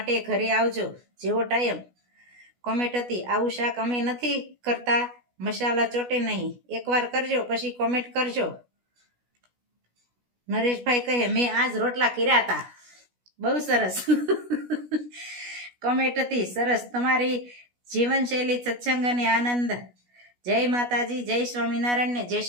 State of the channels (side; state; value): left; late; 16 ms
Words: ઘરે આવજો જેવો ટાઈમ. કોમેન્ટ હતી આવું શાક અમે નથી કરતા, મસાલા ચોટે નહીં, એકવાર કરજો પછી કોમેન્ટ કરજો. નરેશભાઈ કહે મેં આજ રોટલા કર્યા હતા. બહુ સરસ. કોમેન્ટ હતી સરસ, તમારી જીવનશૈલી સત્સંગ અને આનંદ. જય जय माताजी, जय स्वामीनारायण ने जय